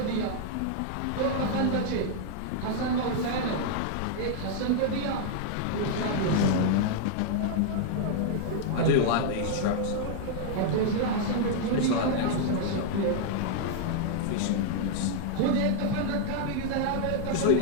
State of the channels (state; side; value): different; both; correlation 0.00